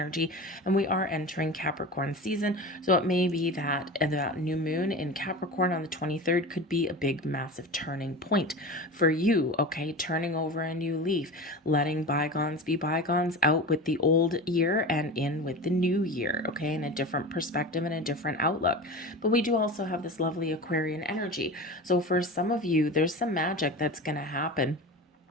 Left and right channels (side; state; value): both; normal; correlation 0.30